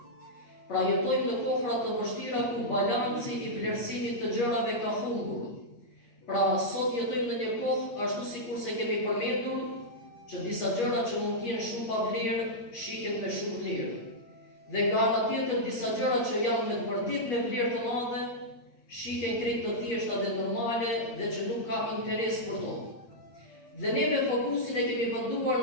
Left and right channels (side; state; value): right; late; 8.4 ms